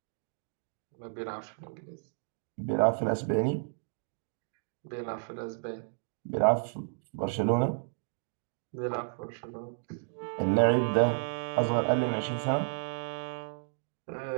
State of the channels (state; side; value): silent; left; digital silence